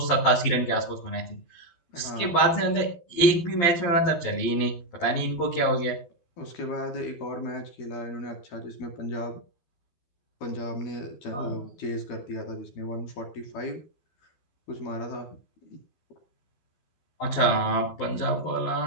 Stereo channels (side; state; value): right; late; 12 ms